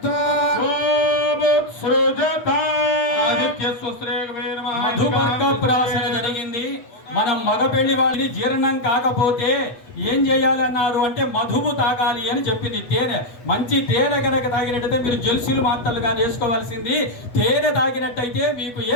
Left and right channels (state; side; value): late; right; 8.2 ms